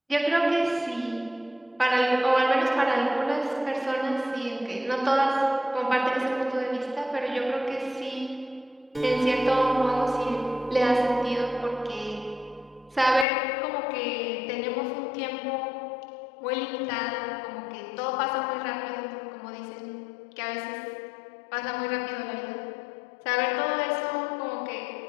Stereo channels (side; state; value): right; drops out; at 13.2 s